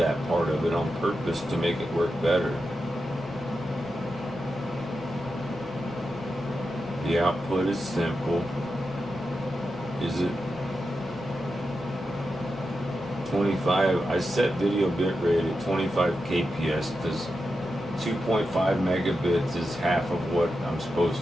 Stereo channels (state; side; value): normal; both; correlation 0.89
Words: part of it on purpose to make it work better. The output is simple. Is it 25? I set video bitrate at 25 kps because 2.5 megabits is half of what I'm